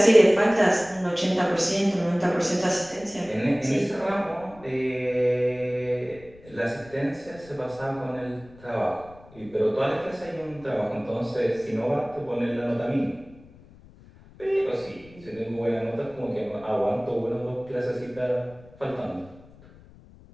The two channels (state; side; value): noise; left; rumble, 23 dB below the sound